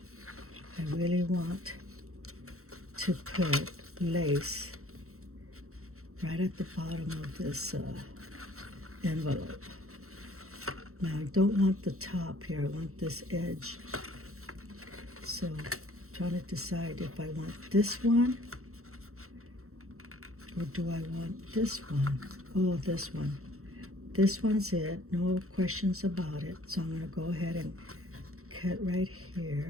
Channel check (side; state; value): left; late; 0.63 ms